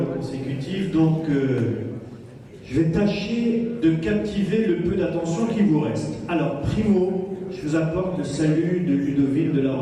consécutives, donc je vais tâcher de captiver le peu d'attention qui vous reste. Alors, primo, je vous apporte le salut de Ludovine de La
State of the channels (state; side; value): identical; both; correlation 1.00